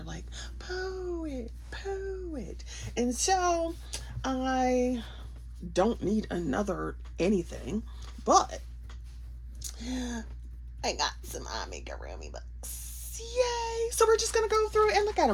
like, poet, poet. And so I don't need another anything, but I got some amigurumi books. Yay! So we're just gonna go through and look at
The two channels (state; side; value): identical; both; correlation 1.00